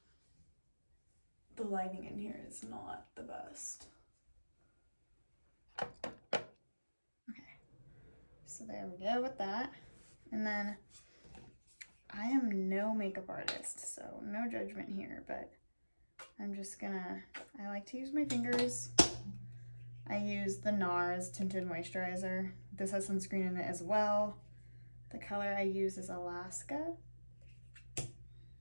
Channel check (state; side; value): inverted; both; correlation -1.00